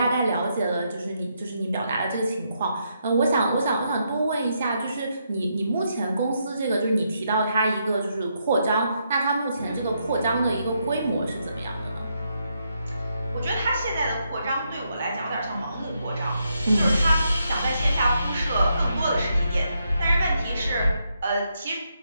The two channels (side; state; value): both; inverted; correlation -0.79